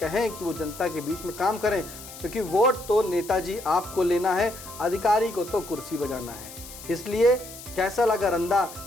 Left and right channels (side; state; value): left; noise; hiss, 15 dB below the sound